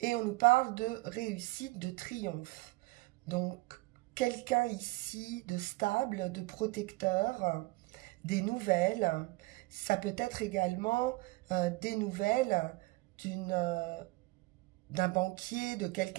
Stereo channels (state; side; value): quieter; left; 22.8 dB